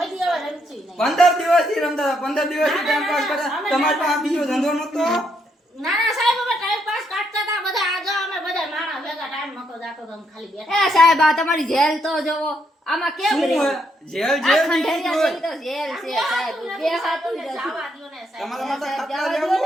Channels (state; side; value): normal; both; correlation 0.75